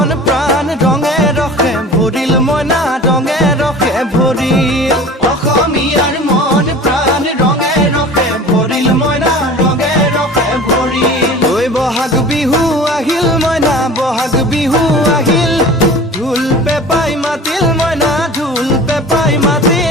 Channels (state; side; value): normal; both; correlation 0.40